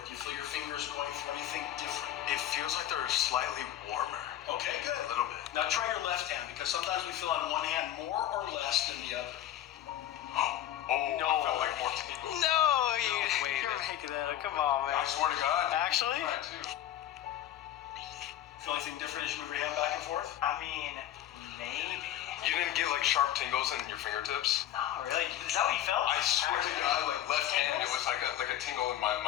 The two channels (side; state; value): right; quieter; 12.2 dB